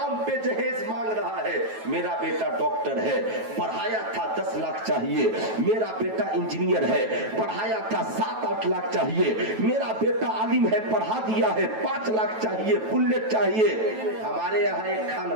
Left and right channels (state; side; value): late; left; 9.2 ms